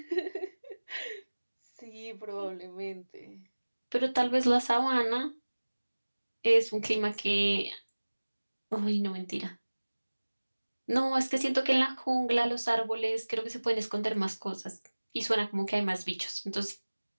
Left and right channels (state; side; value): inverted; both; correlation -1.00